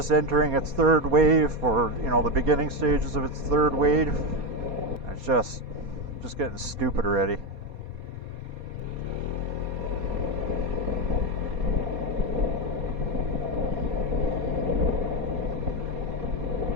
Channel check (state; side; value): late; left; 4.2 ms